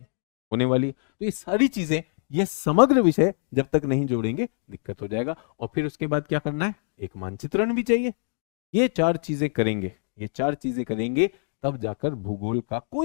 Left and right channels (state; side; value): silent; right; digital silence